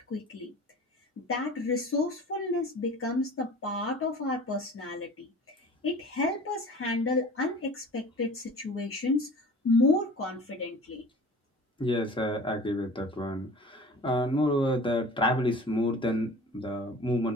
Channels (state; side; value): normal; both; correlation 0.42